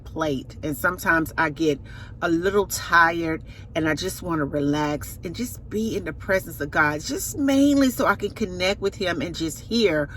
and sometimes I get a little tired and I just want to relax and just be in the presence of God, just mainly so I can connect with him and just hear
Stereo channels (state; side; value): identical; both; correlation 1.00